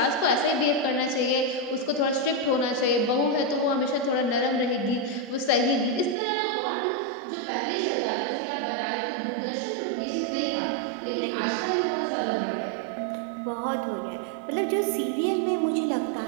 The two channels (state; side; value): drops out; left; at 6.2 s